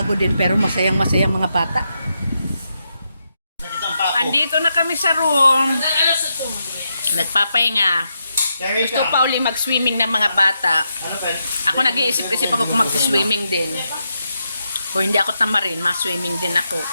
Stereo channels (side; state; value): both; inverted; correlation -0.83